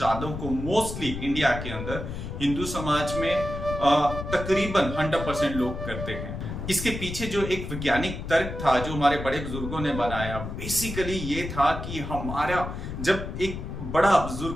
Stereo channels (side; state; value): left; noise; rumble, 7 dB below the sound